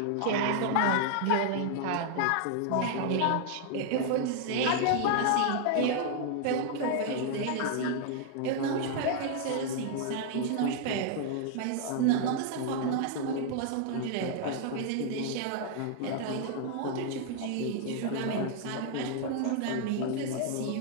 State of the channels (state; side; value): different; both; correlation 0.00